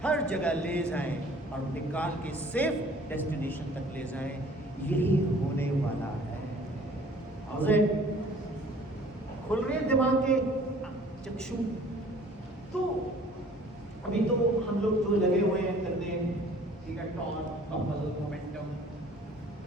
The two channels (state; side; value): normal; both; correlation 0.52